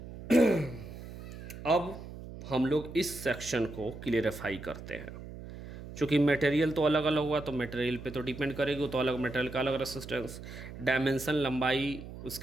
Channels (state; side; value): noise; right; hum, 12 dB below the sound